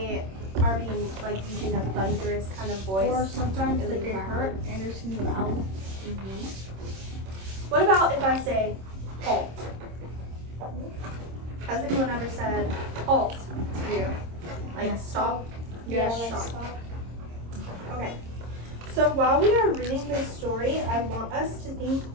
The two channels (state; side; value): late; left; 26 ms